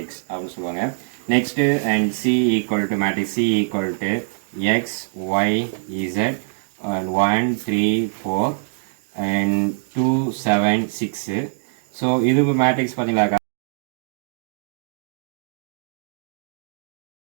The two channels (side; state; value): left; silent; digital silence